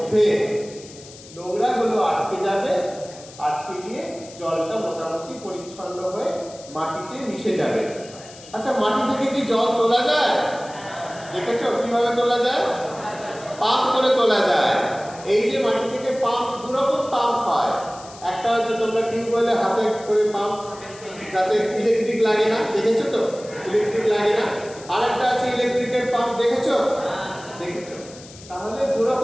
নোংরাগুলো আটকে যাবে, আটকে গিয়ে জলটা মোটামুটি পরিচ্ছন্ন হয়ে মাটিতে মিশে যাবে। আচ্ছা, মাটি থেকে কি জল তোলা যায়? দেখেছো কিভাবে তোলা যায়? পাম্প করে তোলা যায়। এই যে মাটি থেকে পাম্প, দুরকম পাম্প হয়। একটা হচ্ছে তোমরা টিউবওয়েলে হাতে করে পাম্প, যাতে ইলেকট্রিক লাগে না, দেখেছো তো? ইলেকট্রিক লাগে না। আর একটা আছে ইলেকট্রিকের পাম্প, দেখেছো? দেখেছো? তাহলে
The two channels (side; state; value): left; noise; hiss, 19 dB below the sound